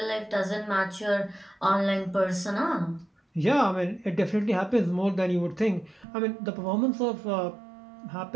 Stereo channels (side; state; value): left; drops out; at 6.1 s